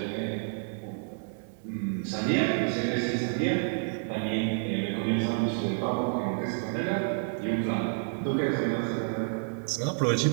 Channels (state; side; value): silent; left; 58 dB below the other